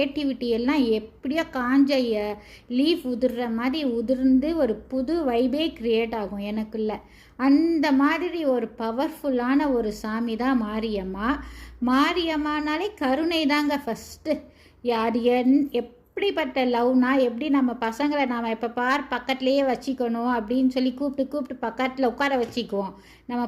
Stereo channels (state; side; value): identical; both; correlation 1.00